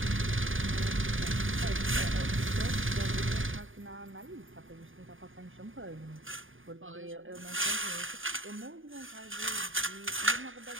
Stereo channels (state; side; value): late; left; 0.58 ms